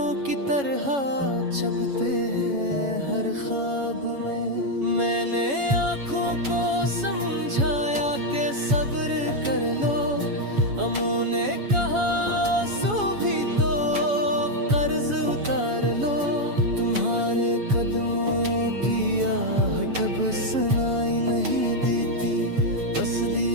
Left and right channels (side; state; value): left; late; 7.1 ms